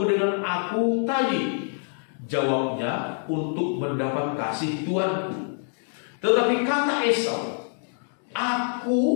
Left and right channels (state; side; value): silent; right; 61 dB below the other